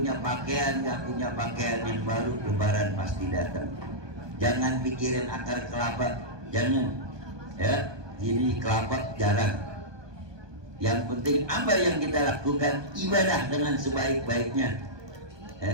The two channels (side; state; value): left; late; 1.2 ms